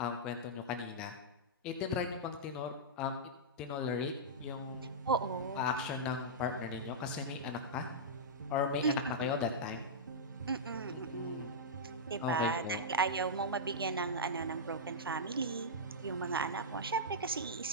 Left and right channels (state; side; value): normal; both; correlation -0.12